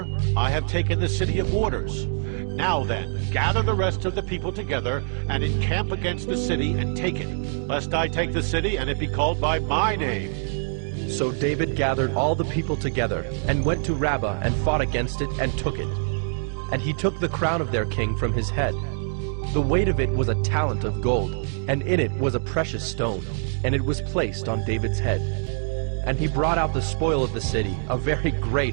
I have taken the city of waters. Now then, gather the rest of the people together, and encamp against the city, and take it, lest I take the city, and it be called by my name. So David gathered all the people together, and went to Rabbah, and fought against it, and took it. And he took the crown of their king from his head. The weight of it was a talent of gold, and in it was a precious stone, and it was placed on David's head. And he brought out the spoil of the city, a very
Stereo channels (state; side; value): silent; left; digital silence